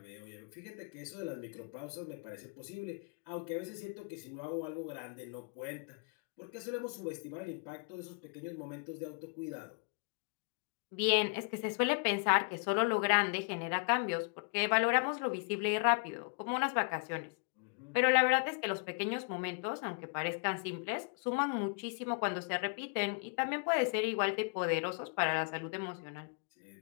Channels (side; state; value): right; quieter; 36.7 dB